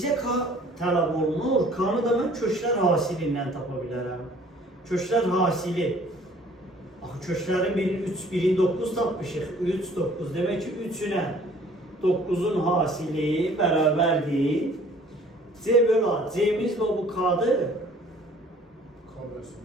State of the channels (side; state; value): both; normal; correlation 0.54